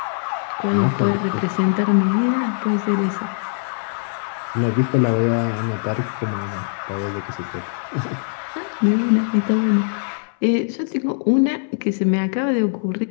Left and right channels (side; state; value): right; silent; 65 dB below the other